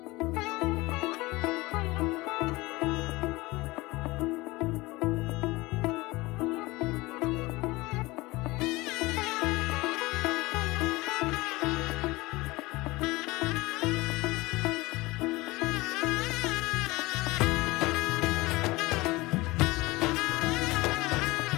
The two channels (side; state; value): right; quieter; 21.5 dB